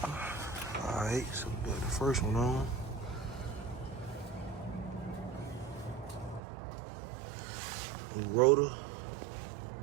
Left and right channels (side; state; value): left; drops out; at 6.4 s